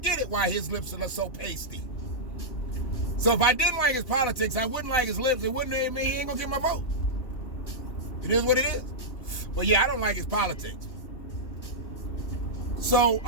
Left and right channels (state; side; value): late; right; 2.9 ms